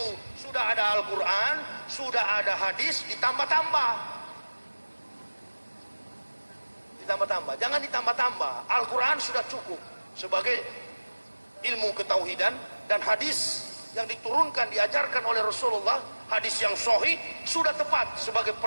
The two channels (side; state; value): both; inverted; correlation -1.00